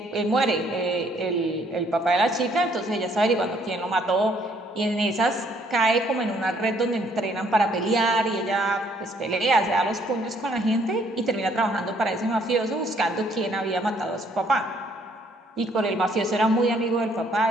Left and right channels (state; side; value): normal; both; correlation 0.65